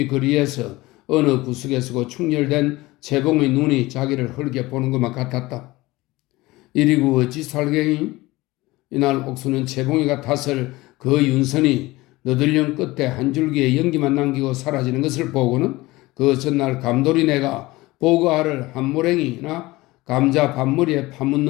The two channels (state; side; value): quieter; right; 20.0 dB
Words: 거리에서 어느 구석에 서고 충혈된 최봉의 눈이 자기를 헐게 보는 것만 같았다. 이리고 어찌 살갱이? 이날 옥수는 최봉이가 탓을 그 윤선이 너들령 끝에 한 줄기의 연기만 남기고 사라지는 것을 보고는 그 전날 감돌이네가 보고알을 한 모랭이나 감자 밥머리에